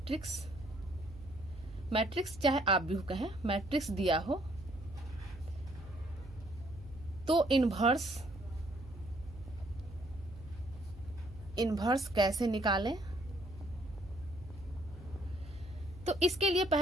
मैट्रिक्स चाहे आव्यूह कहें, मैट्रिक्स दिया हो तो इन्वर्स कैसे निकालें। तो इसके लिए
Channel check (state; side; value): noise; right; hum, 16 dB below the sound